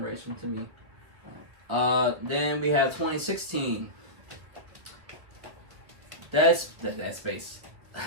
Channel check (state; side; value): late; left; 1.7 ms